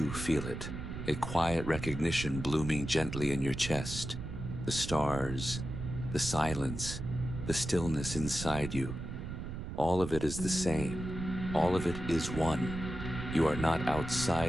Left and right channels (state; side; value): noise; right; rumble, 7 dB below the sound